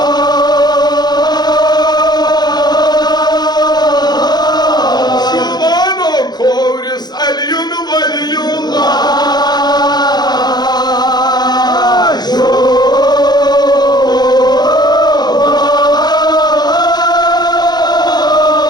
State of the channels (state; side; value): late; right; 0.20 ms